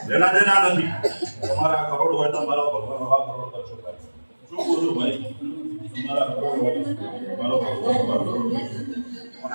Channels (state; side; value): inverted; both; correlation -1.00